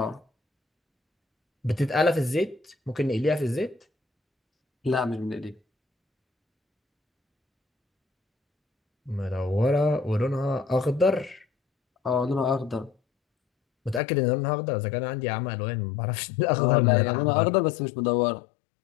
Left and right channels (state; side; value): drops out; right; at 14.0 s